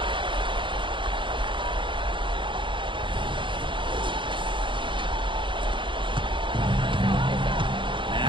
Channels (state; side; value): late; left; 0.24 ms